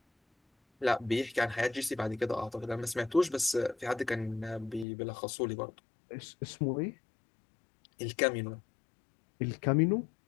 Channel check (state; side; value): drops out; right; at 4.9 s